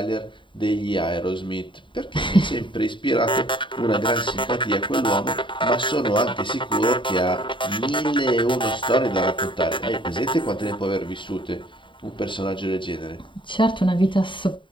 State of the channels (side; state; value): right; late; 0.24 ms